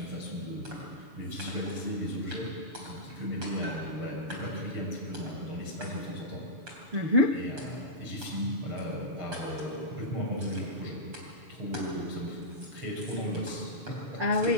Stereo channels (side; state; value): left; late; 7.0 ms